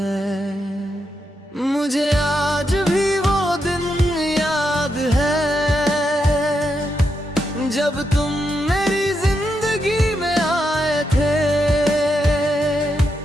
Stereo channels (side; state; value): both; normal; correlation 0.83